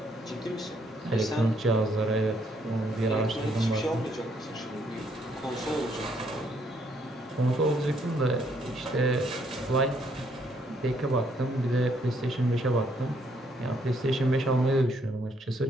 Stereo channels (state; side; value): normal; both; correlation 0.70